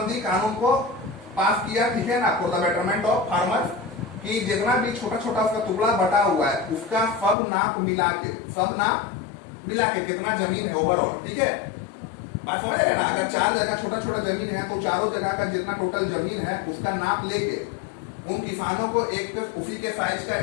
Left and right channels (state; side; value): drops out; right; at 7.4 s